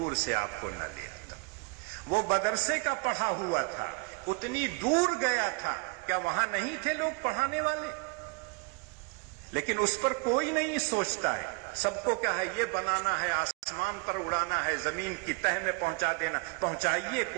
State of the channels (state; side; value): quieter; left; 30.6 dB